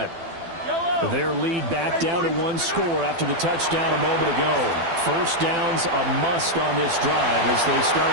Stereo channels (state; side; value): late; left; 12 ms